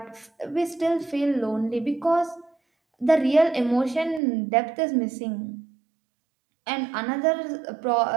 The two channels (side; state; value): left; drops out; at 4.2 s